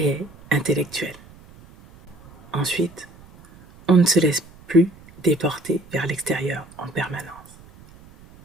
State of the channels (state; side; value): noise; right; rumble, 23 dB below the sound